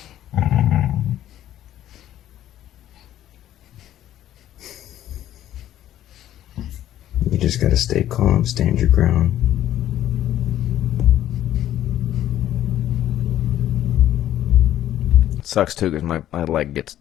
You just gotta stay calm, stand your ground. Sucks too, because my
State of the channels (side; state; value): right; quieter; 12.3 dB